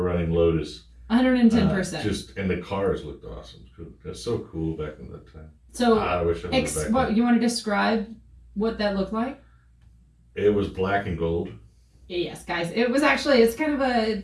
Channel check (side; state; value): both; identical; correlation 1.00